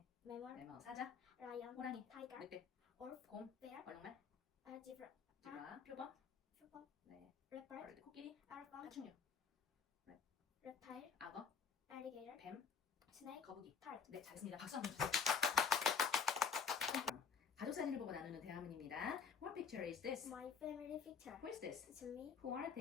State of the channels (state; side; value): quieter; right; 6.1 dB